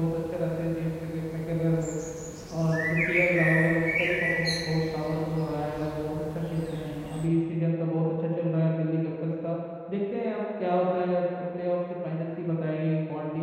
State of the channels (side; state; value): both; identical; correlation 1.00